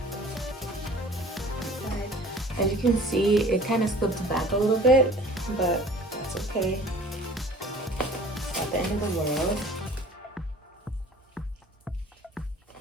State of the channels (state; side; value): normal; both; correlation 0.47